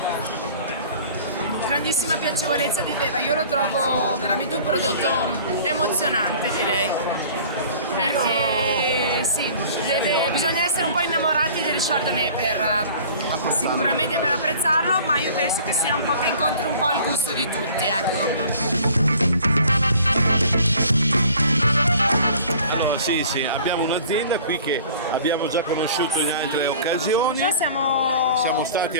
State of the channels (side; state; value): both; inverted; correlation -0.48